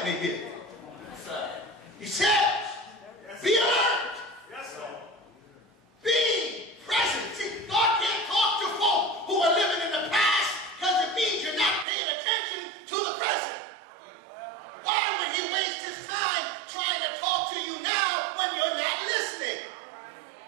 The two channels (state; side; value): drops out; left; at 11.9 s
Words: me here. He says, be alert. Be present. See, God can't talk to folk who are living in the past because it means you're not paying attention to the present. Why would he waste his time trying to talk to you now when you're not listening?